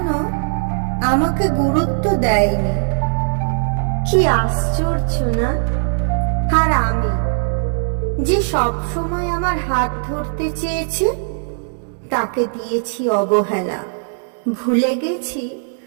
আমাকে গুরুত্ব দেয়নি। কি আশ্চর্য না? আর আমি যে সব সময় আমার হাত ধরতে চেয়েছে তাকে দিয়েছি অবহেলা। ভুলে গেছি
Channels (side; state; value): left; silent; digital silence